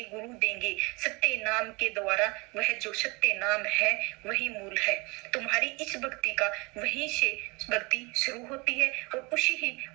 गुरु देंगे सत्य नाम के द्वारा। वह जो सत्य नाम है वही मूल है। तुम्हारी इस भक्ति का वहीं से भक्ति शुरू होती है, और उसी ही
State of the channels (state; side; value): quieter; left; 27.1 dB